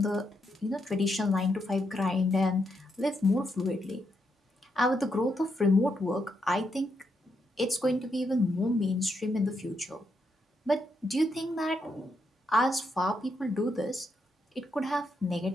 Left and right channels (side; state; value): both; normal; correlation 0.80